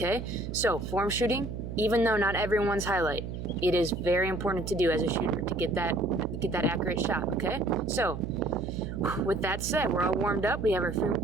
So form shooting, even though not everyone's highlight, it is very important to do as a shooter to get that accurate shot, okay? So with that said, we're all warmed up. We have our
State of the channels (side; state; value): right; noise; hum, 7 dB below the sound